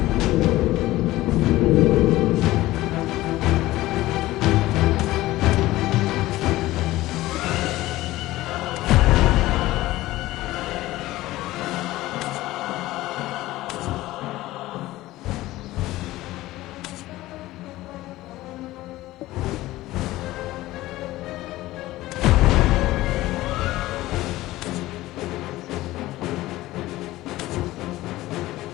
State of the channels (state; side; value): quieter; right; 17.1 dB